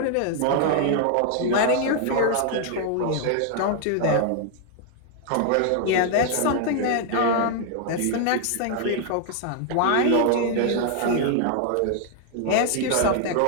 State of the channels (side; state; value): both; different; correlation 0.00